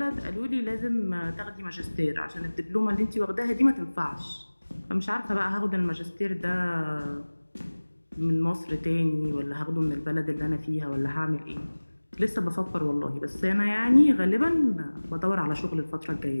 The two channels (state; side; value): inverted; both; correlation -1.00